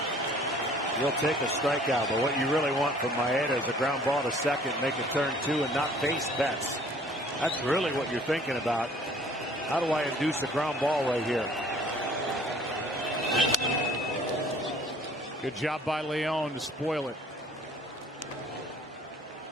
You'll take a strikeout, but what you really want from Maeda is a ground ball to second, make a turn 2, and not face Betts. That's really what you're thinking about. How do I induce a ground ball right here? Good job by León to spoil it.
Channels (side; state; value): both; normal; correlation 0.54